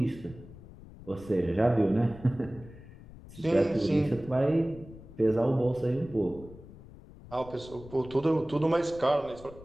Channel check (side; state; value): left; noise; rumble, 18 dB below the sound